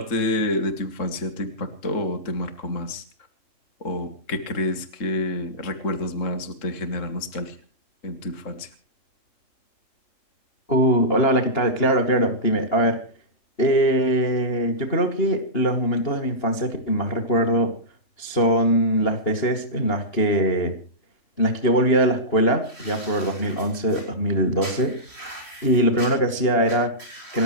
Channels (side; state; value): right; late; 2.9 ms